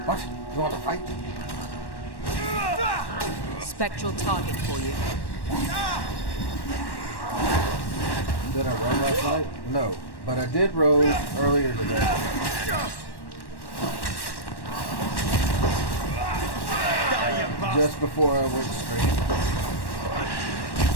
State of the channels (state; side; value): late; right; 1.1 ms